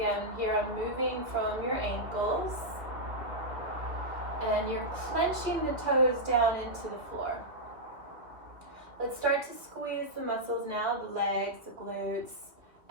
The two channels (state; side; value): late; left; 2.1 ms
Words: here I'm moving from your ankles. And you're clenching the toes down into the floor. Let's start to squeeze the muscles now, the legs, the glutes,